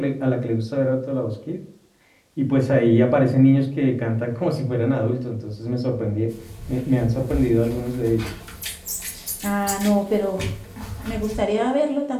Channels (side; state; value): both; identical; correlation 1.00